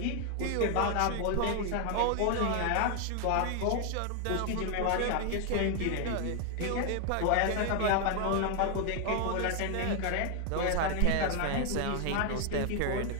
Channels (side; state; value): both; different; correlation 0.01